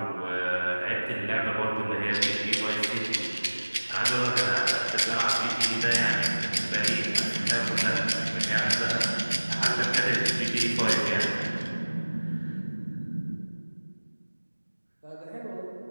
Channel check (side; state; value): both; inverted; correlation -1.00